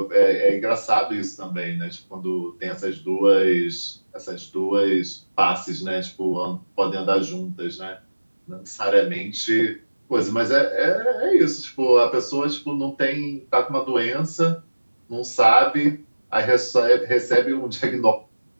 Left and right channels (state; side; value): inverted; both; correlation -1.00